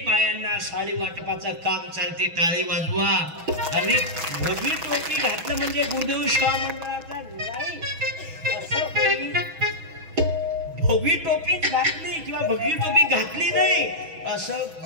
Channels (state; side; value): late; left; 6.1 ms